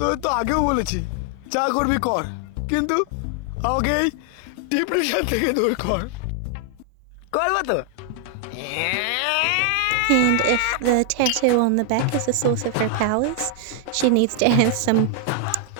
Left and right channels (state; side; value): different; both; correlation 0.00